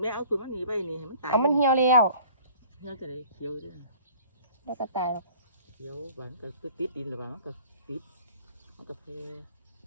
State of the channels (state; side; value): inverted; both; correlation -0.50